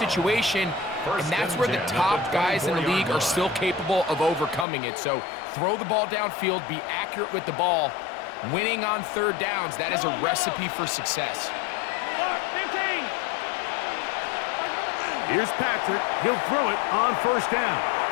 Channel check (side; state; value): right; drops out; at 4.7 s